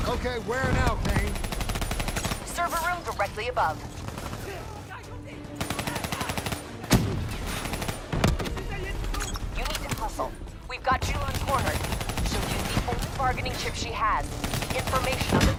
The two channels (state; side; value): identical; both; correlation 1.00